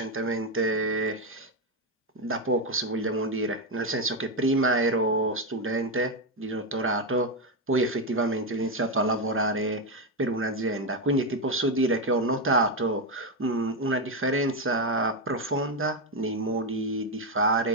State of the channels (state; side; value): normal; both; correlation 0.07